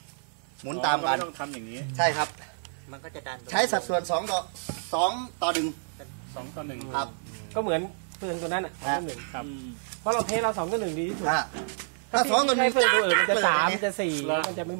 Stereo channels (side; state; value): left; silent; 59 dB below the other